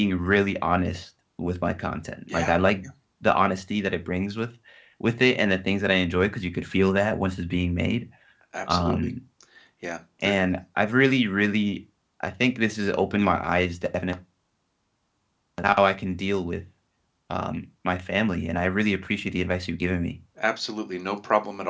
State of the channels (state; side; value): identical; both; correlation 1.00